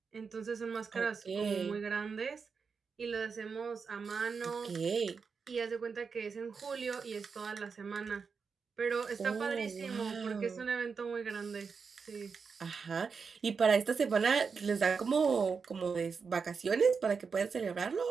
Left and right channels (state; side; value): quieter; left; 5.5 dB